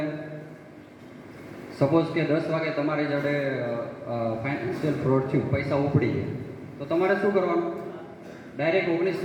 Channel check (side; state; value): both; identical; correlation 1.00